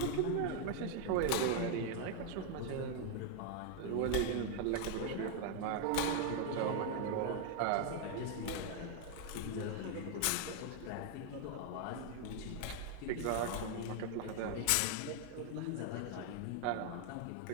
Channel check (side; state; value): both; different; correlation 0.00